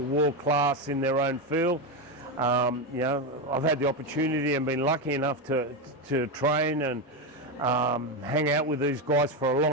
class in their own field. I've had the opportunity and been lucky enough to train and hang out with these guys for a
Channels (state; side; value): normal; both; correlation 0.12